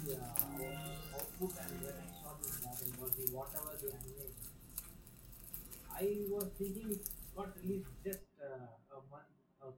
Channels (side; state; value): both; identical; correlation 1.00